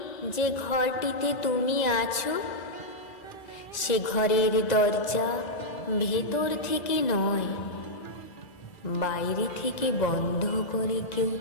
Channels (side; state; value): right; late; 1.9 ms